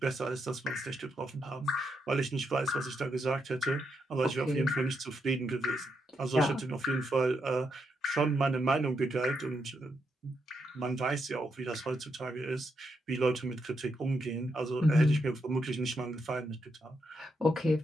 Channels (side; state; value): both; normal; correlation 0.81